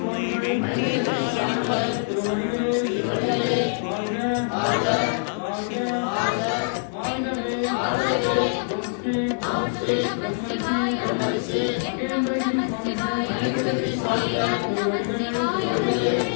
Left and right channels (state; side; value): silent; right; digital silence